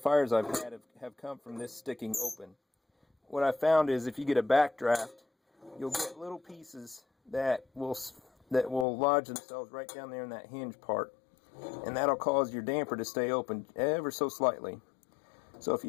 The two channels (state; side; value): drops out; right; at 8.8 s